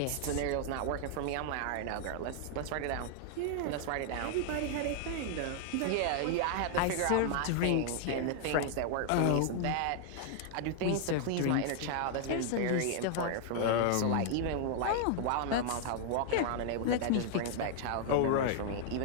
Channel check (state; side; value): different; both; correlation 0.00